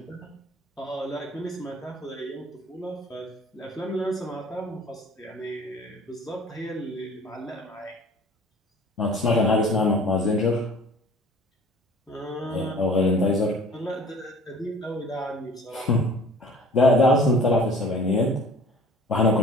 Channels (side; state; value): both; normal; correlation 0.47